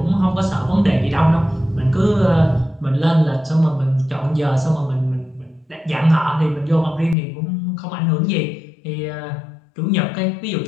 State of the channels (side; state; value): right; drops out; at 7.2 s